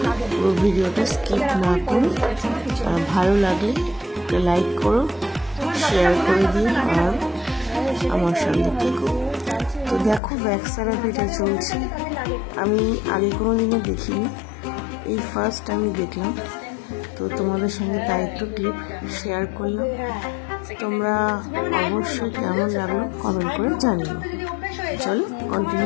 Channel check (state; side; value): drops out; right; at 10.2 s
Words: পুরো ভিডিওটা স্কিপ না করে। ভালো লাগলে একটা লাইক করো, শেয়ার করে দিও আর আমার সঙ্গে থেকো। তো দেখো ভ্যাক্স থেরাপিটা চলছে, আমি আগে কোনো দিনও দেখিনি, এই ফার্স্ট আমি দেখলাম। তো তোমাদের সঙ্গে তাই একটু ক্লিপ শেয়ার করলাম। তোমরা অবশ্যই কেমন লাগলো কমেন্ট করে জানিও। চলো